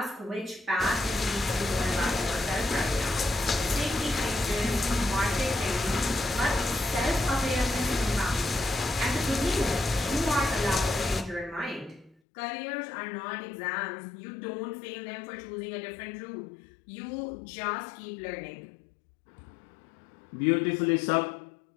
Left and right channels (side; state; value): right; drops out; at 12.2 s